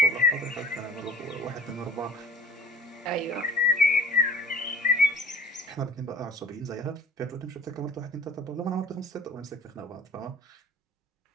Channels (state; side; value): normal; both; correlation 0.47